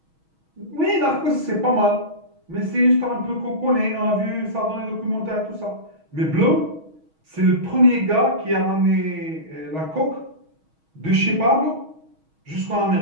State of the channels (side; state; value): left; late; 6.3 ms